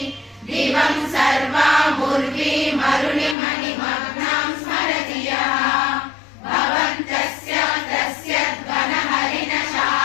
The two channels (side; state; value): right; drops out; at 3.4 s